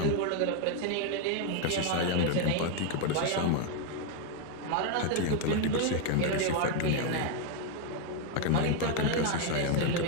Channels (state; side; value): different; both; correlation 0.01